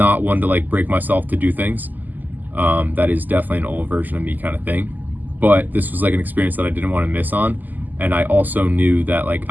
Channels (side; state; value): left; late; 0.084 ms